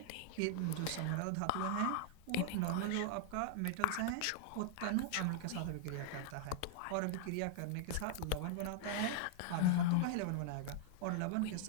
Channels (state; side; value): different; both; correlation -0.01